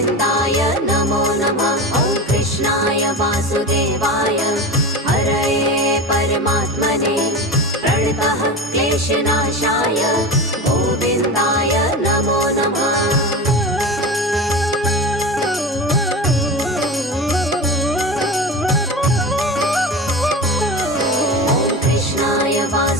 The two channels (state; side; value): normal; both; correlation 0.27